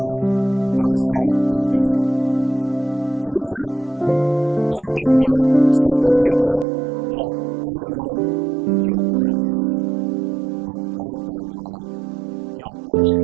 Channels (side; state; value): left; drops out; at 6.7 s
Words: bangsa India. Jadi dia lengkapnya statement dia bilang, ya, I like your Christ, but I don't like your